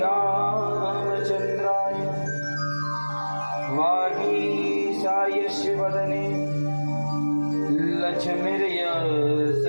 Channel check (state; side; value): inverted; both; correlation -1.00